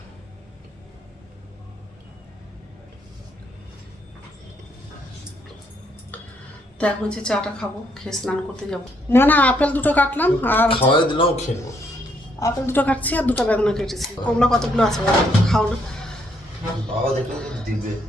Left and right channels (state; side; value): normal; both; correlation 0.72